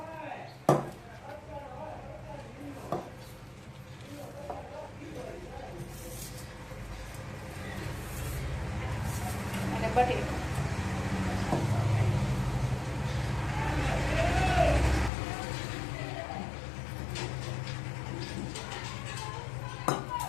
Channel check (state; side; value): drops out; right; at 15.1 s